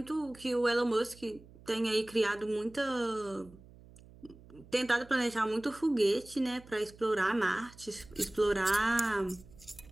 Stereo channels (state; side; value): noise; right; hum, 22 dB below the sound